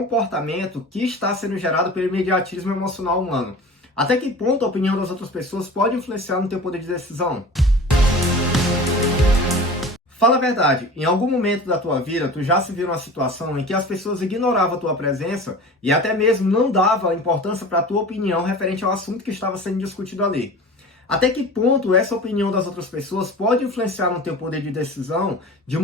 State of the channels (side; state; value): both; normal; correlation 0.38